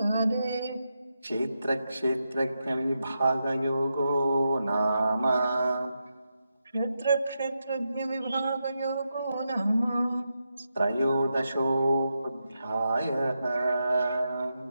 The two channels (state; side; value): inverted; both; correlation -0.86